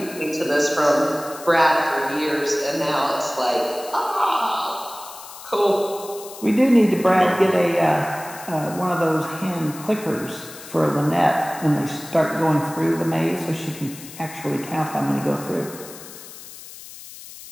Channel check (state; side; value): noise; left; hiss, 15 dB below the sound